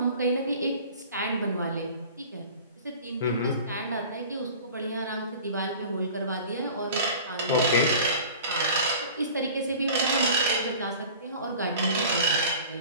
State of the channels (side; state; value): both; inverted; correlation -0.42